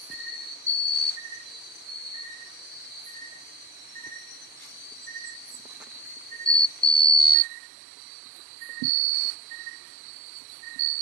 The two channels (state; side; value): drops out; left; at 7.4 s